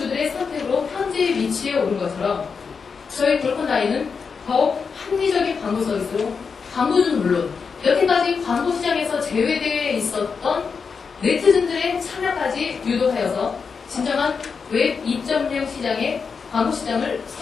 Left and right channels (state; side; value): quieter; right; 5.5 dB